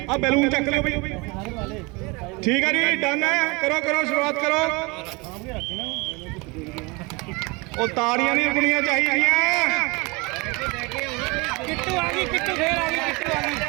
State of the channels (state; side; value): quieter; left; 26.8 dB